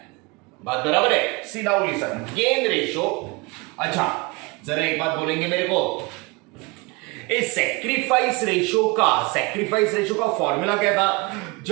बात बराबर है? सी नाउ लिसन, गेन रेशो। अच्छा, जरा एक बात बोलेंगे मेरे को, इस सैक्रिफाइस रेशो का फॉर्मूला क्या था?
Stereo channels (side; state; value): left; quieter; 26.6 dB